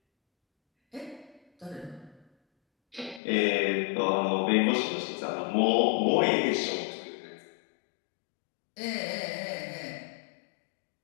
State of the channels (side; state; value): right; drops out; at 3.2 s